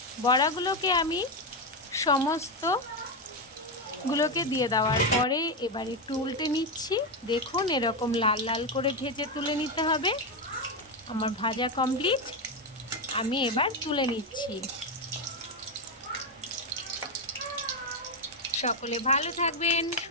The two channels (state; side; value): normal; both; correlation 0.09